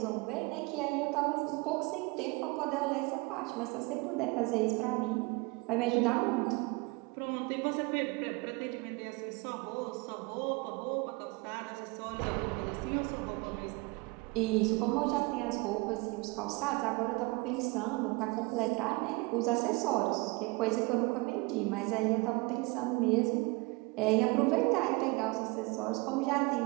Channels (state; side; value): quieter; left; 26.4 dB